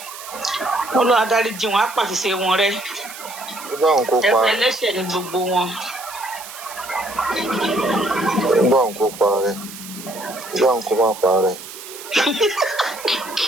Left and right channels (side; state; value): right; noise; hiss, 13 dB below the sound